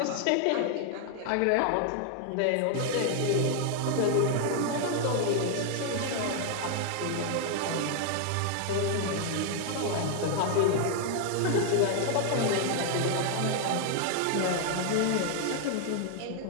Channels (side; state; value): both; different; correlation 0.00